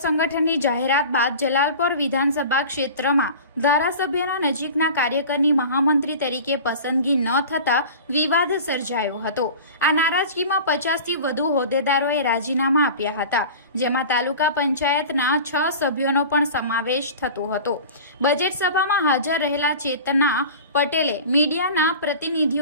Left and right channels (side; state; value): both; inverted; correlation -0.37